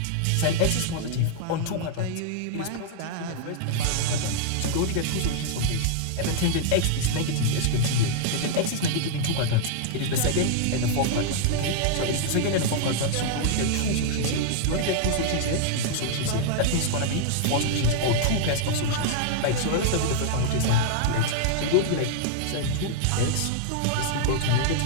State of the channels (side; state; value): both; different; correlation -0.01